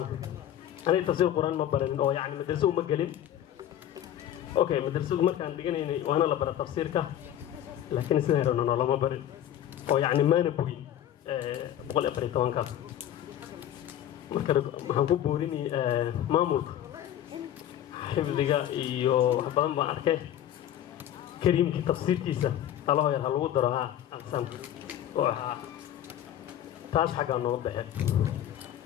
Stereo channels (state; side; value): quieter; right; 11.3 dB